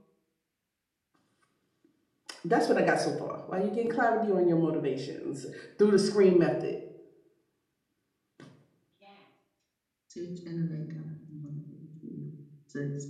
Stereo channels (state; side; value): identical; both; correlation 1.00